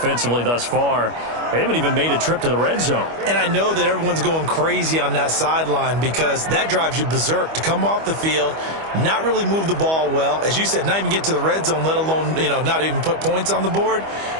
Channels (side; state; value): left; late; 25 ms